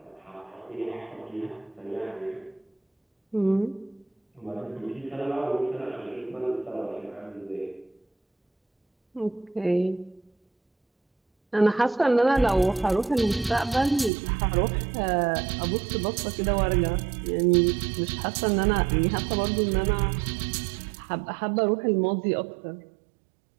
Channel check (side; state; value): left; drops out; at 14.1 s